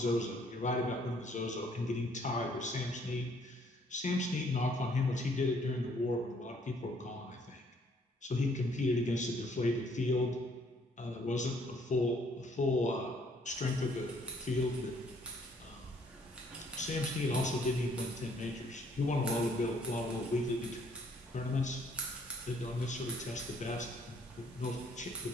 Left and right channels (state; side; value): normal; both; correlation 0.64